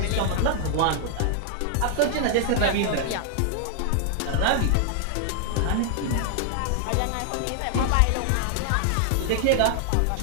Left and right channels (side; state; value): both; different; correlation 0.00